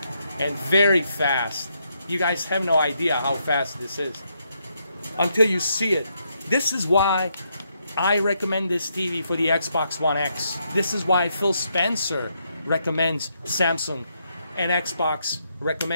and very fast. You guys have no idea how fast this is until you see it. This is why I recommend this TV for the Xbox One X. This is why Phil Spencer recommends Samsung, and Xbox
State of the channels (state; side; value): inverted; both; correlation -0.78